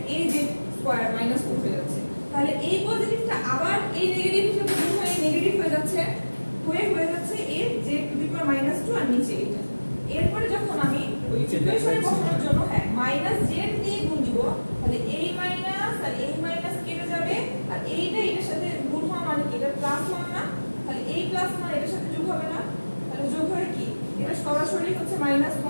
এই যে স্কয়ার -2 হয়ে যাচ্ছে। তাহলে এই পজিটিভটা আবার এই নেগেটিভ হিসেবে গুণ হয়ে নেগেটিভ হয়ে যাচ্ছে, হয়ে যাচ্ছে এই z টু দি পাওয়ার -2 আর নিচে এটা। এরপরে যখন আমি ওই ইকুয়েশনে বসানোর জন্য z দিয়ে গুণ দিব, তাহলে এই মাইনাস আর এই মাইনাস কেটে যাবে আর এইটা এটার সাথে গুণ হওয়া মানে কি, এটা +1 না, তাহলে এই +1 এটার সাথে যোগ হবে না, তাহলে যোগ হয়ে কি এটা সরাসরি হচ্ছে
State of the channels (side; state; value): both; inverted; correlation -1.00